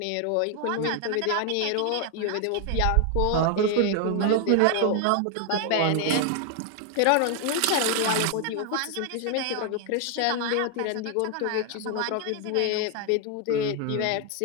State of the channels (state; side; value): different; both; correlation 0.00